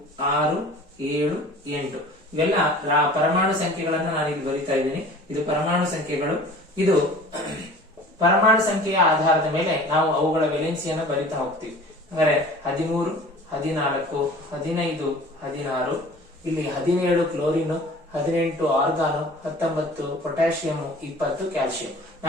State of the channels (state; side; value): normal; both; correlation 0.44